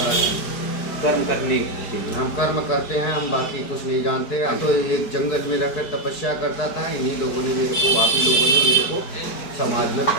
जानते हैं। कर्म करने के लिए हम कर्म करते हैं, हम बाकी कुछ नहीं जानते। हम तो एक जंगल में रहकर तपस्या करता था, इन्हीं लोगों ने मेरे को, आप ही लोगों ने मेरे को समाज में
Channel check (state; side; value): late; right; 4.7 ms